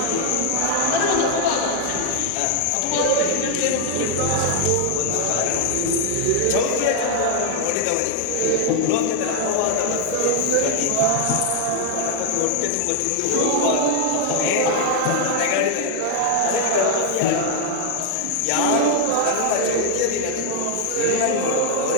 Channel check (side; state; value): both; different; correlation 0.00